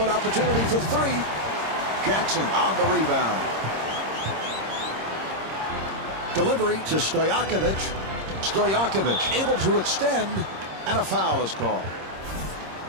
opportunity for 3. Jackson on the rebound. Delivery to Stojakovic. Stojakovic able to extend, and a foul is called.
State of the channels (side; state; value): left; late; 26 ms